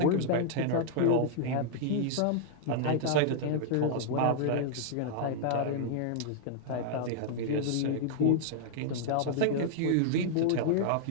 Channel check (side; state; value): both; different; correlation -0.01